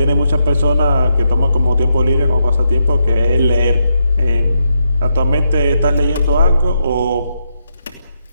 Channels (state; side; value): inverted; both; correlation -0.81